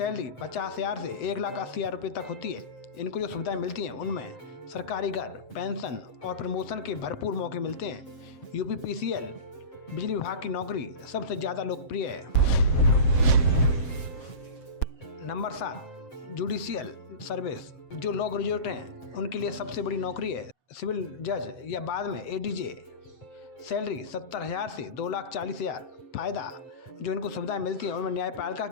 50,000 से 1,80,000 रुपये तक होती है। इनको जो सुविधाएं मिलती हैं उनमें सरकारी घर, पेंशन और प्रमोशन के भरपूर मौके मिलते हैं। UPPCL बिजली विभाग की नौकरी सबसे ज़्यादा लोकप्रिय है। Number 7, judicial service. जो लॉ ग्रेजुएट हैं उनके लिए सबसे बड़ी नौकरी है सिविल जज या बाद में ADJ। सैलरी 70,000 से 2,40,000। फ़ायदा जो इनको सुविधाएं मिलती हैं उनमें न्यायपालिका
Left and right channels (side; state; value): right; late; 7.7 ms